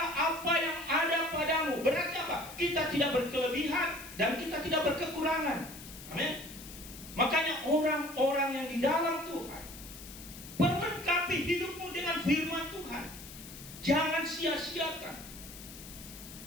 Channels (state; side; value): noise; left; hiss, 14 dB below the sound